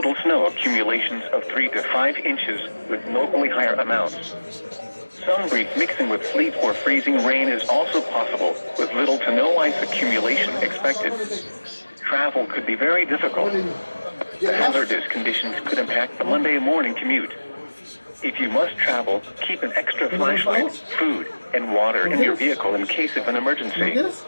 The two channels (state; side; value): inverted; both; correlation -1.00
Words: snow accumulations of 3 to 5 inches with locally higher amounts. Some brief mixing with sleet or freezing rain is also possible, with little to no ice accumulation expected. Travel could be very difficult. The hazardous conditions could impact the Monday morning commute. If you must travel, keep an extra flashlight, food, and water in your vehicle in case of an emergency.